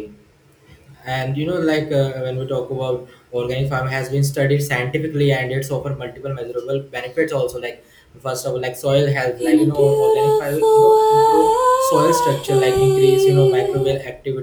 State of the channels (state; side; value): identical; both; correlation 1.00